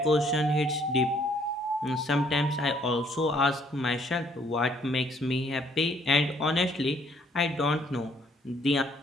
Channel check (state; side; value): normal; both; correlation 0.65